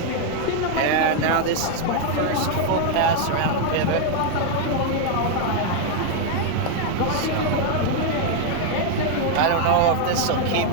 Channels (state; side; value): different; both; correlation 0.00